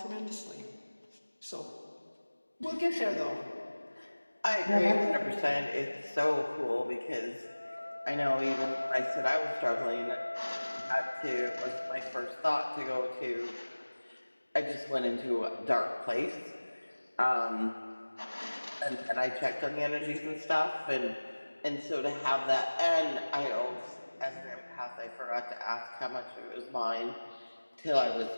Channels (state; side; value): inverted; both; correlation -1.00